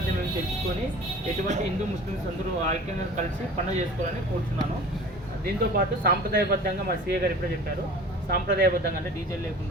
ఏమి తెలుసుకొని ఎటువంటి హిందూ ముస్లిమ్స్ అందరూ ఐక్యంగా కలిసి పండుగ చేసుకోవాలని కోరుతున్నాను. దీంతోపాటు సాంప్రదాయబద్ధంగా మా సీఏ గారు ఇప్పుడే చెప్పారు, సాంప్రదాయబద్ధంగా అంటే డీజే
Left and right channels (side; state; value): both; normal; correlation 0.42